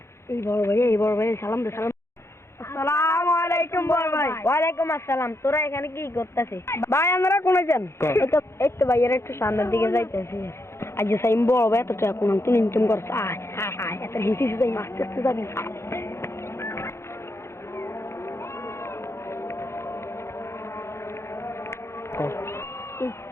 এই বড় ভাই সালাম দে সালাম। আসসালামু আলাইকুম বড় ভাই। ওয়ালাইকুম আসসালাম। তোরা এখানে কি করতেছিস? ভাই আমরা কোনে যান? এই তো ভাই এর একটু সামনের দিকে যাইতেছি। আজ সাইম বড় ভাই তো কোন তুই ইনকাম করছ। আয় আয় আয় এত হিসি যাই আস্তে আস্তে যাবি।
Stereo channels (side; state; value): right; late; 0.13 ms